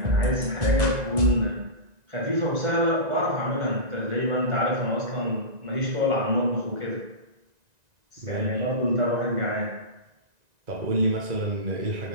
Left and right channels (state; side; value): late; left; 1.9 ms